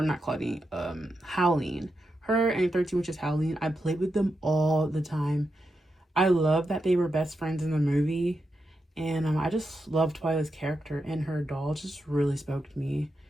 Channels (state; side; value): normal; both; correlation 0.86